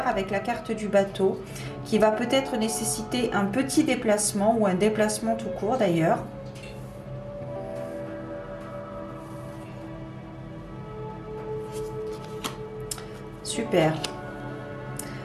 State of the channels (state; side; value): identical; both; correlation 1.00